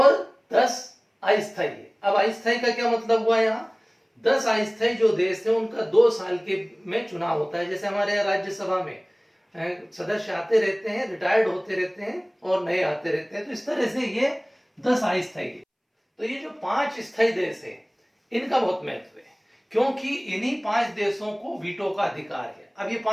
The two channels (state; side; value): identical; both; correlation 1.00